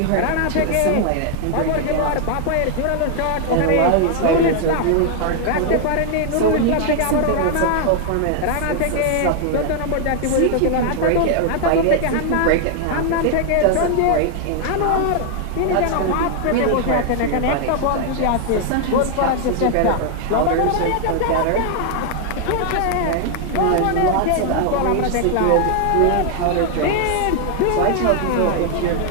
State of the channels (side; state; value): both; different; correlation 0.00